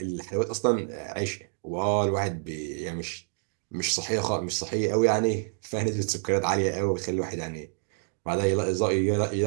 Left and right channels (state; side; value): silent; left; digital silence